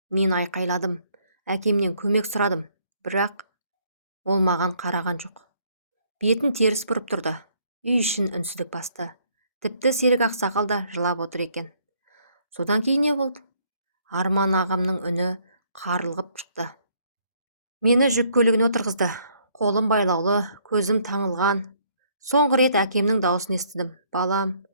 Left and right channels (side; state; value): both; inverted; correlation -0.66